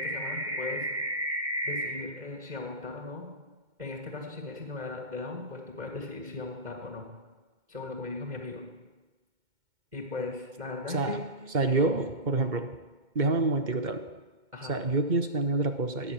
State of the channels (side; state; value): left; late; 2.2 ms